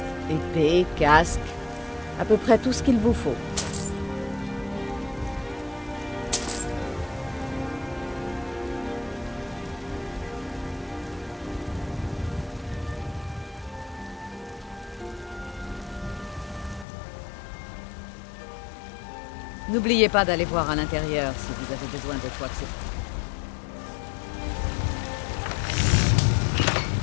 Épée, casque, à peu près tout ce qu'il vous faut. N'oubliez pas d'aller voir à l'intérieur si vous avez besoin de quoi que ce soit.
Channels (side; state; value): right; drops out; at 16.9 s